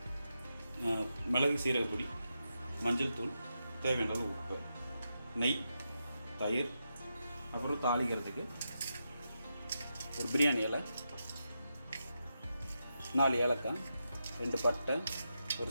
மிளகு சீரகப்பொடி, மஞ்சள் தூள், தேவையான அளவு உப்பு, நெய், தயிர், அப்புறம் தாளிக்கிறதுக்கு ஒரு பிரியாணி இலை, 4 ஏலக்காய், 2 பட்டை, ஒரு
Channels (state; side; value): inverted; both; correlation -0.86